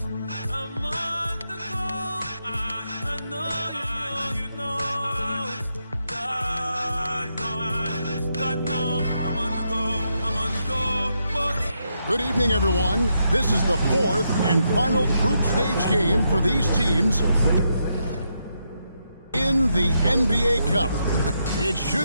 on the go. I know, you know. God know. I'm on the go. But good evening, everyone. This is the fourth and final group stage game for these teams in the NBA Cup. It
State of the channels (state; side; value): inverted; both; correlation -0.81